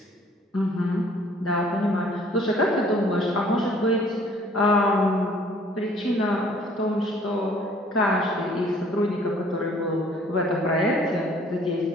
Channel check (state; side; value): normal; both; correlation 0.57